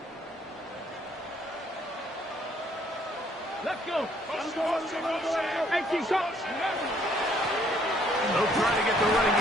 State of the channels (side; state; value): both; normal; correlation 0.65